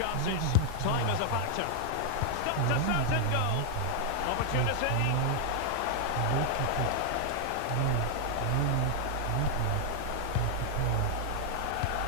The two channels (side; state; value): both; different; correlation 0.00